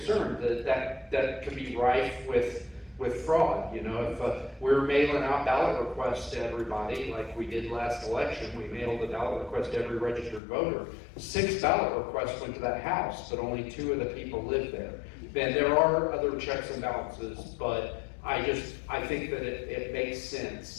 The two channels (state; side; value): drops out; right; at 10.4 s